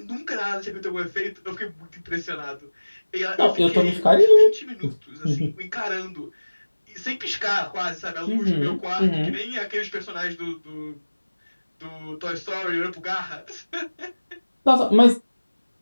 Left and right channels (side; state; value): both; inverted; correlation -1.00